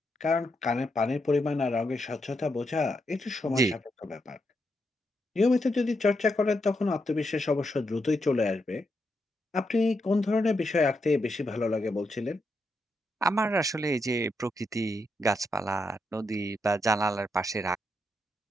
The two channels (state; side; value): normal; both; correlation 0.82